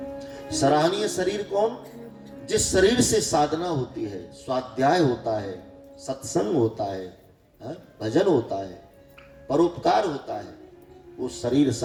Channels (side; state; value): both; identical; correlation 1.00